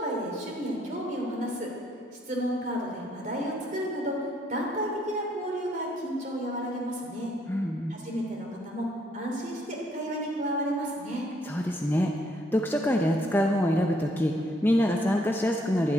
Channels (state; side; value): normal; both; correlation 0.69